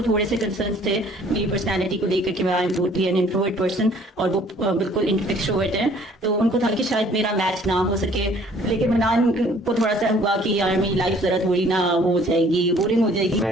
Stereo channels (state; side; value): normal; both; correlation 0.57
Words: थोड़े से कंसर्न्स थे मेरी पर्सनालिटी को लेकर कि मैं I am totally an introvert person और वो बिल्कुल एक्सट्रोवर्ट है, तो उनको था कि शायद मेरा मैच ना हो सके। लेकिन मनान को थोड़ा सा हुआ कि यार मेरी लाइफ जरा थोड़ी ना हो जाएगी, बोरिंग हो जाएगी।